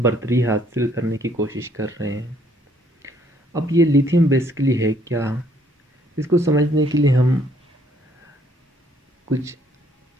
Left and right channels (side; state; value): both; normal; correlation 0.65